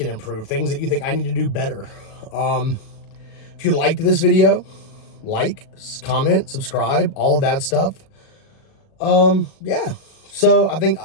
improve, things that you think I need to do better. If you liked this video, like, comment, subscribe, all of that stuff. Yeah. So I think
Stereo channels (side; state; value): right; late; 37 ms